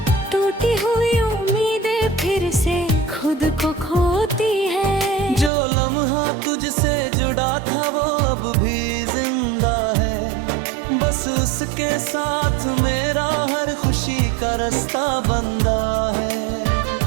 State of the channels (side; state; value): left; drops out; at 5.5 s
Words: टूटी हुई उम्मीदें फिर से खुद को खोती है। जो लम्हा तुझसे जुड़ा था वो अब भी जिंदा है। बस उसके साथ मेरा हर खुशी का रास्ता बंदा है।